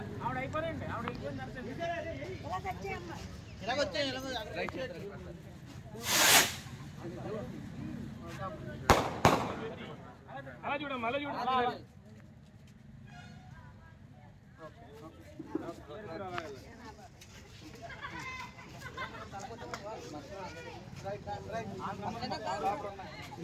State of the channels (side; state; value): both; identical; correlation 1.00